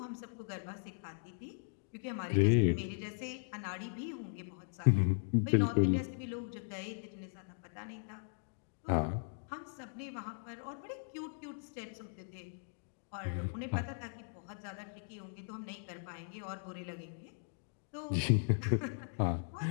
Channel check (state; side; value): silent; right; digital silence